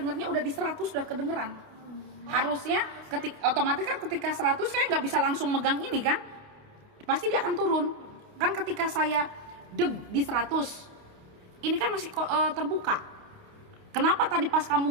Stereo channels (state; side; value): late; left; 28 ms